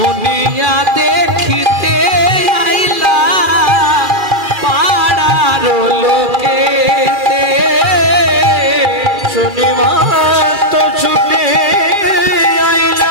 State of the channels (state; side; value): late; left; 2.4 ms